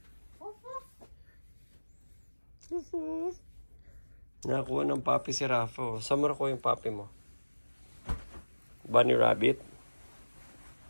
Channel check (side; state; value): both; inverted; correlation -1.00